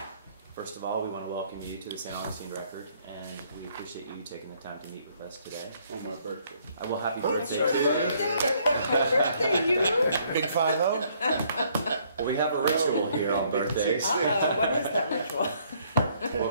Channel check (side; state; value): both; inverted; correlation -0.66